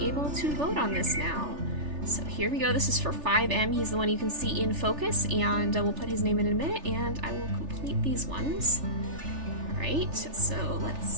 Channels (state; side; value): late; left; 3.4 ms